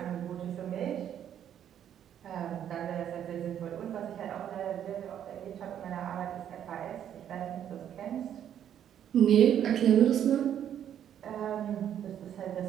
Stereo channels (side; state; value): left; quieter; 9.9 dB